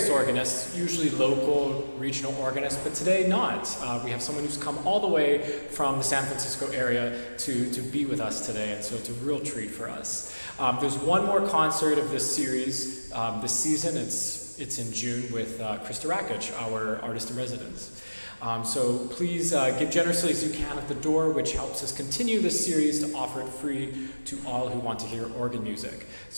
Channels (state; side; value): inverted; both; correlation -1.00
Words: organists, usually local, regional organists, but today not. We have someone who's come all the way from the San Francisco area to be with us today, and so it's a real treat for us. There's one more concert of this series this season. It's in June with Krista Rakic, our artist in residence. So please give generously as you can at the door, which helps us continue this series to offer it free to all who want to hear organ music.